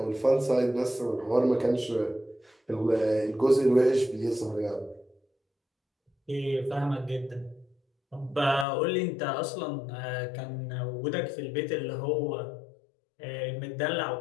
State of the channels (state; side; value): drops out; right; at 8.7 s